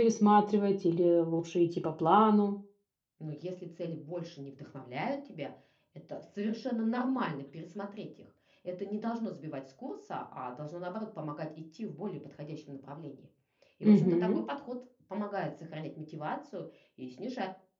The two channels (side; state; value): both; identical; correlation 1.00